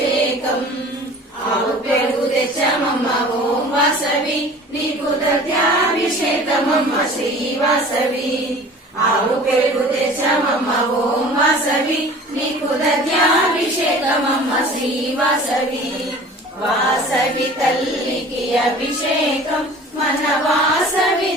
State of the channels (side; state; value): both; normal; correlation 0.44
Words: ఆవు పెరుగు తెచ్చమమ్మ ఓం వాసవి నీకు దత్యాభిషేకమమ్మ శ్రీ వాసవి ఆవు పెరుగు తెచ్చమమ్మ ఓం వాసవి నీకు దత్యాభిషేకమమ్మ శ్రీ వాసవి వాసవి తల్లికి అభిషేకం మన వాసవి